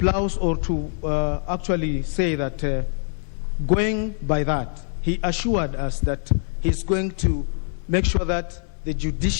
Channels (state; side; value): silent; right; digital silence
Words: or to actually say that going by that, he assured us that he's going to make sure that the